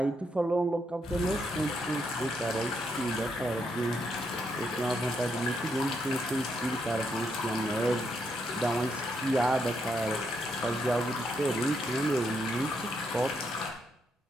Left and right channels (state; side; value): normal; both; correlation 0.78